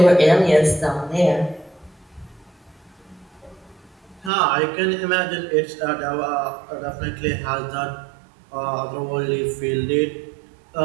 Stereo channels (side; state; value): left; drops out; at 4.3 s